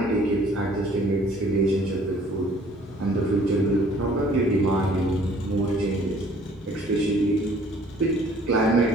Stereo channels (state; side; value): normal; both; correlation 0.56